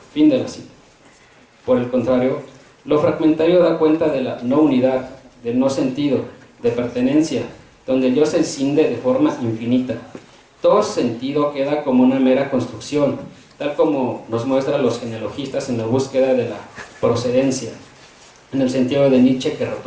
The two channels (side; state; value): both; identical; correlation 1.00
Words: Fin de la cita. Por el contrario, lo fragmentario da cuenta de la no unidad, del no sentido, de pertenencia, donde el yo se escinde de forma infinita. Todo sentido queda como una mera construcción, tal como nos muestran los genealogistas en la búsqueda de la procedencia, en el sentido de Nietzsche que